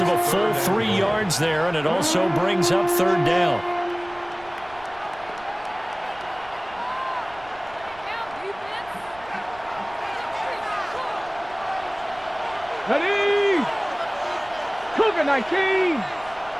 of a full 3 yards there, and it also brings up third down. Ready! Cougar 19!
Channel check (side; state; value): right; noise; rumble, 23 dB below the sound